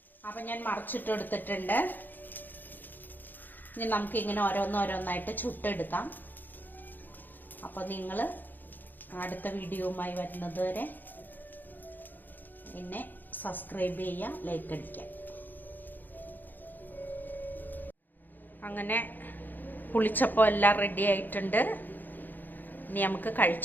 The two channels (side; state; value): right; late; 0.088 ms